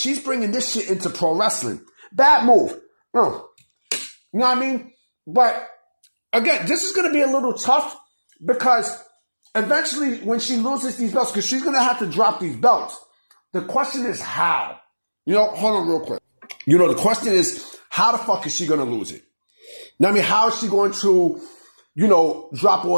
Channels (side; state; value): both; inverted; correlation -1.00